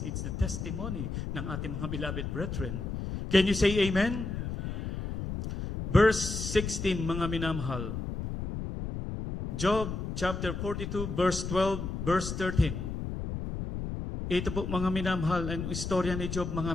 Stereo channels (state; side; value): noise; left; rumble, 5 dB below the sound